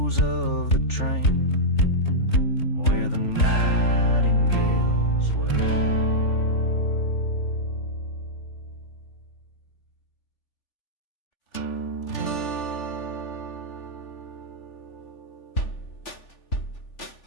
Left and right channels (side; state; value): right; late; 3.4 ms